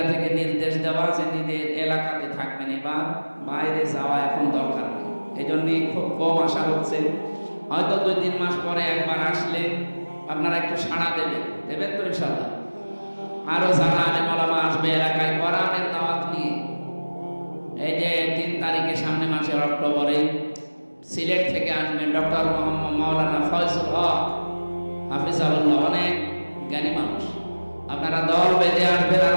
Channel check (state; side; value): inverted; both; correlation -1.00